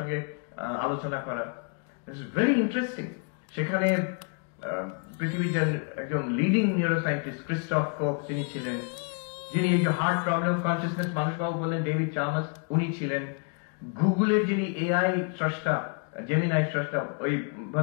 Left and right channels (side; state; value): right; quieter; 39.5 dB